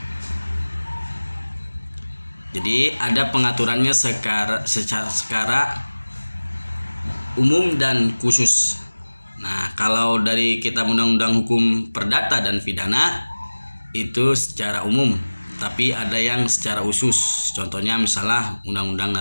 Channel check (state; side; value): inverted; both; correlation -1.00